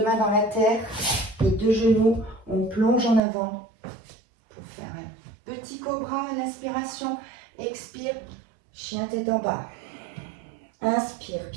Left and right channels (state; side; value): drops out; left; at 3.2 s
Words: mains dans la terre, les deux genoux, on plonge en avant pour faire un petit cobra à l'inspiration. Expire, chien tête en bas. Inspire,